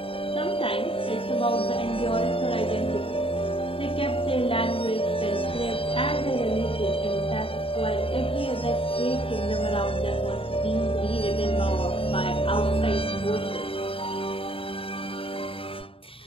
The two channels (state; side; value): late; right; 0.27 ms